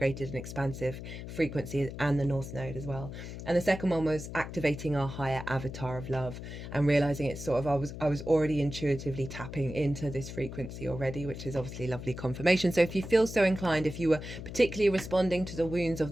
and expansive frequency, and the North Node as well. And the second one was activating our higher avatar of love and realizing it's sort of, I was already intuitively tapping into this frequency already, which is obviously lovely confirmation. So if you feel so inclined, if you were particularly responding to the wounds of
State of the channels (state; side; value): noise; left; hum, 9 dB below the sound